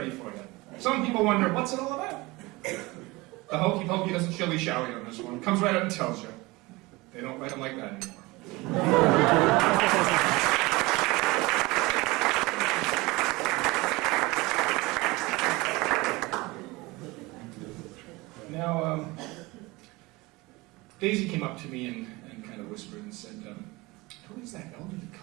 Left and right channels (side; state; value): left; quieter; 22.5 dB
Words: for you. Some people wonder, what's it all about? The hokey pokey doesn't shilly-shally on this one. It comes right out and tells you. They don't write them like that anymore. Now, Daisy came up to me and kind of whispered and said, who is that elderly